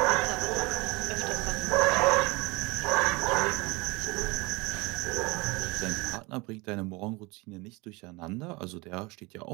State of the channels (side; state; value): left; quieter; 25.4 dB